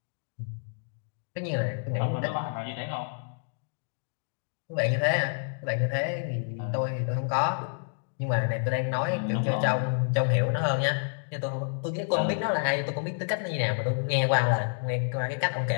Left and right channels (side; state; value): right; silent; digital silence